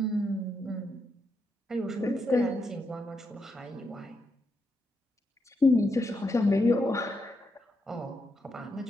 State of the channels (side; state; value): both; normal; correlation 0.82